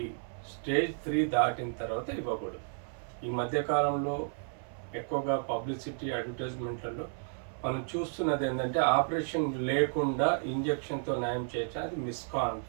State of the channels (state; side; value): silent; left; 56 dB below the other